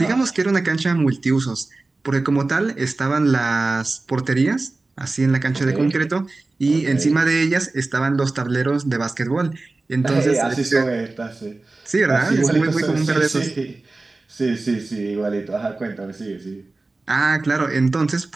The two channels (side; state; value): left; quieter; 3.3 dB